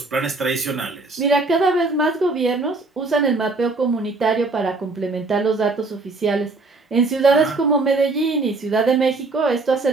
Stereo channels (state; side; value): quieter; left; 3.5 dB